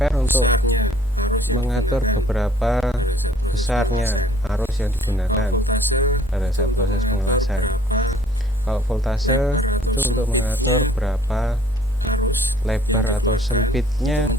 untuk mengatur beberapa besarnya arus yang digunakan pada saat proses pengelasan. Kalau voltase itu untuk mengatur berapa lebar atau sempitnya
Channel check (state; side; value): normal; both; correlation 0.57